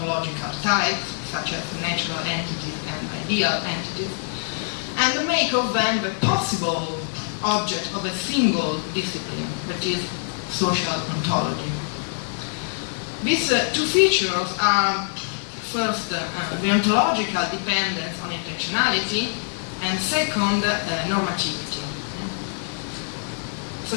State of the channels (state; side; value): silent; right; 62 dB below the other